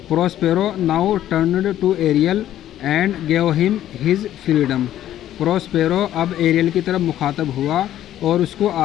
Prospero now turned to Ariel and gave him his freedom. Prospero अब एरियल की तरफ मुखातब हुआ और उसको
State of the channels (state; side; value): quieter; right; 12.2 dB